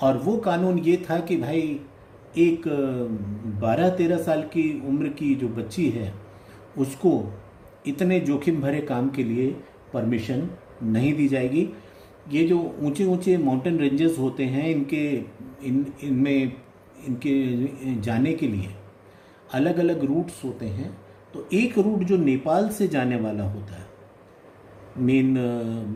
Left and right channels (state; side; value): identical; both; correlation 1.00